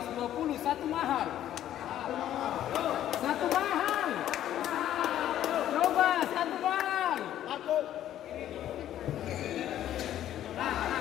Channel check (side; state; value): right; quieter; 11.8 dB